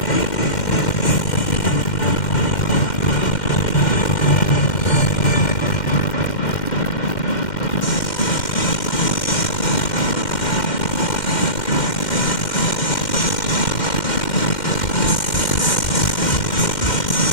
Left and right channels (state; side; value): late; right; 2.1 ms